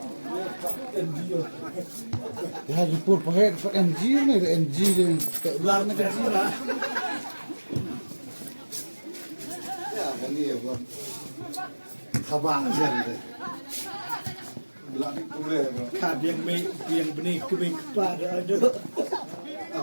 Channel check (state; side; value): inverted; both; correlation -1.00